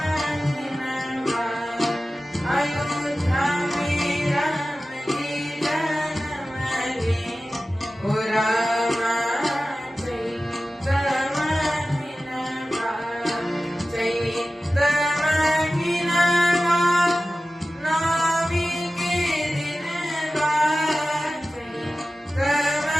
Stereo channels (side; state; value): both; normal; correlation 0.95